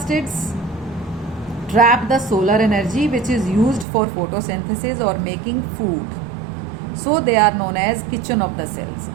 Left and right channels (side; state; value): left; drops out; at 3.9 s